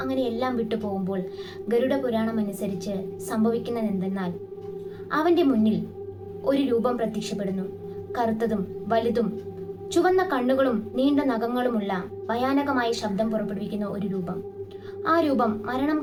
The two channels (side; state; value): both; identical; correlation 1.00